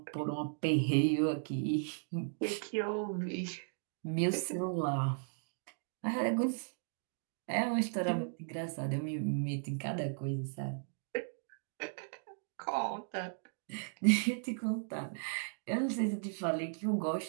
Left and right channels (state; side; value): silent; left; digital silence